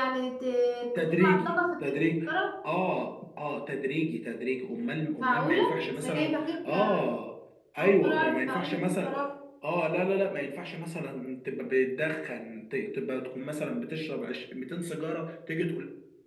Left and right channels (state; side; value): identical; both; correlation 1.00